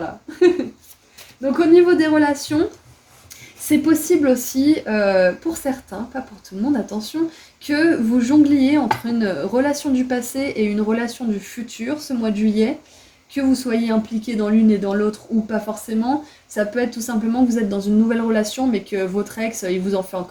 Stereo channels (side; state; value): both; identical; correlation 1.00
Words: Donc au niveau des relations, c'est possible aussi, pour certains, pas pour tout le monde, attention, que vous jongliez entre une relation du passé et une relation du futur ce mois de juillet, que vous soyez impliqué dans l'une et dans l'autre ou pas forcément. Ça peut être tout simplement que vous êtes dans une nouvelle relation mais que votre ex, il vous en fait